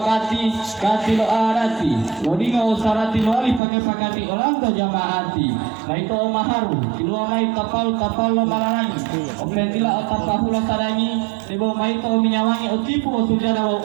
lo arati lodinga usarati lo ali pakati olando jamaati maito o maharu kilo mai kapal lo malanangi opendila otapahula sadangi debo maito minyawangi otipu otujada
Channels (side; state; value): left; drops out; at 3.6 s